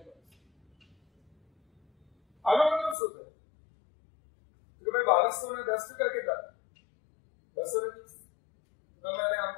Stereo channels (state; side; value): drops out; right; at 3.0 s